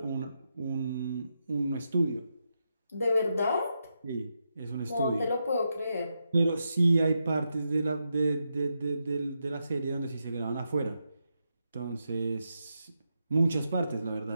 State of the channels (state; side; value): inverted; both; correlation -0.85